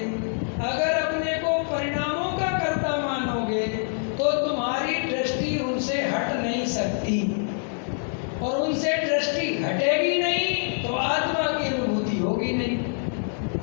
अगर अपने को परिणामों का कर्ता मानोगे, तो तुम्हारी दृष्टि उनसे हट नहीं सकती और उनसे दृष्टि हटेगी नहीं तो आत्मा की अनुभूति होगी नहीं।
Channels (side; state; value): right; silent; 61 dB below the other